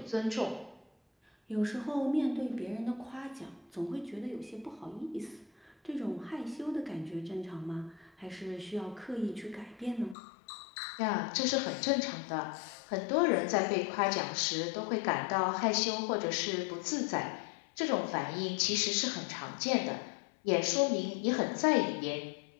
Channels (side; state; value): right; drops out; at 10.2 s